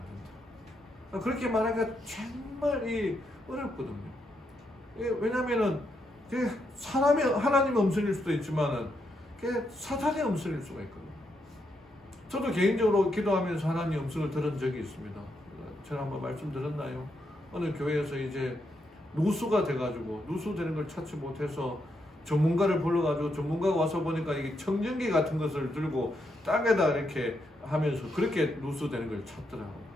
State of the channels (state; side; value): normal; both; correlation 0.80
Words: 그렇게 말하기가 정말 어렵거든요. 왜냐면은 사람의 하나님 음성일 수도 있지만은 사탄의 음성일 수가 있거든요. 저도 개인적으로 기도하면서 하나님 음성을 들은 적이 있습니다. 제가 한번 말씀드렸나요? 어느 교회에서 이제 누수가 돼가지고 누수되는 걸 찾지 못해서 전문가를 불러가지고 전문가가 와서 보니까 이게 청정기 같은 것을 들고 땅에다 이렇게 하면서 그렇게 누수되는 걸 찾더라고요.